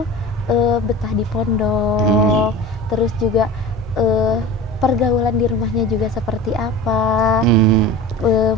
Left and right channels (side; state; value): both; normal; correlation 0.34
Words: betah di pondok, terus juga pergaulan di rumahnya juga seperti apa?